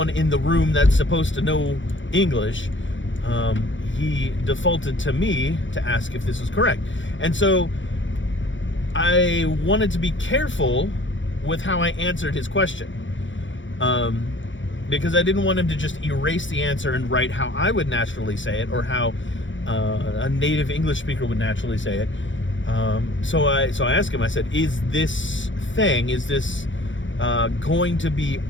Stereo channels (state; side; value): late; right; 0.56 ms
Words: in the room that's supposed to know English, he defaulted to me to ask if this was correct. And so I wanted to be careful with how I answered his question, because I didn't want him to just erase the answer and write how I would naturally say it, or how a native English speaker would naturally say it. So I asked him, I said, is this going to be